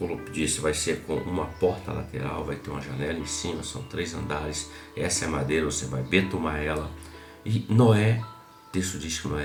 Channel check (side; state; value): both; identical; correlation 1.00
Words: disse, vai ser com uma porta lateral, vai ter uma janela em cima, são 3 andares. Essa é a madeira, você vai betumar ela. E Noé, o texto diz que